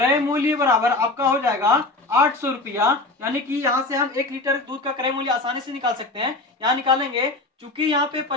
मूल्य बराबर आपका हो जाएगा 800 रुपया, यानी कि यहाँ से हम 1 लीटर दूध का क्रय मूल्य आसानी से निकाल सकते हैं। यहाँ निकालेंगे, चूंकि यहाँ पे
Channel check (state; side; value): quieter; right; 3.0 dB